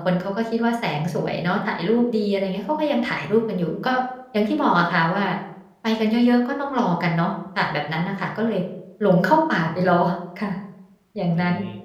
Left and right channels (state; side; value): identical; both; correlation 1.00